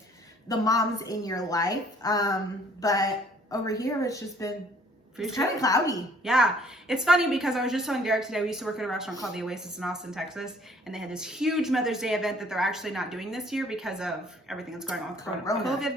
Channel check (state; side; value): normal; both; correlation 0.58